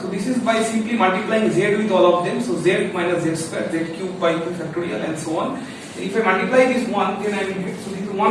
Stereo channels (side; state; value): both; identical; correlation 1.00